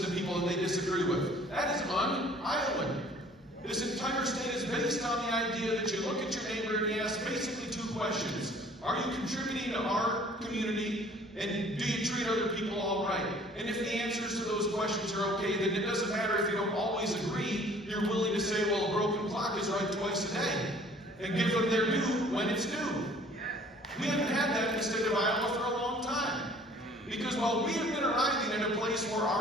to people that they disagree with. That is un-Iowan. This entire state is based on the idea that you look at your neighbor and you ask basically 2 questions. Are you contributing to our community? And do you treat other people all right? And if the answers to those questions are okay, then it doesn't matter if you don't always agree. You're willing to say, well, a broken clock is right twice a day. And give them their due when it's due. We haven't had that in the state of Iowa for a long time. Because while we have been arriving in a place where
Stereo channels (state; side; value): normal; both; correlation 0.53